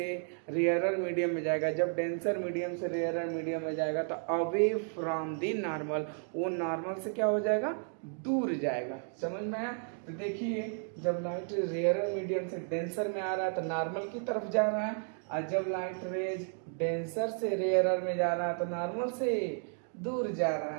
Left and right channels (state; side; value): silent; left; 56 dB below the other